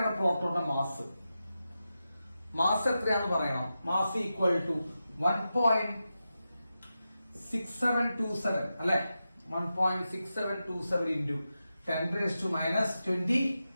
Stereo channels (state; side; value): inverted; both; correlation -0.91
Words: പ്രോട്ടോണിന്റെ മാസ്? മാസ് എത്രയാണെന്ന് പറയണം. മാസ് ഈക്വൽ ടു 1.6727 അല്ലെ? 1.6727 into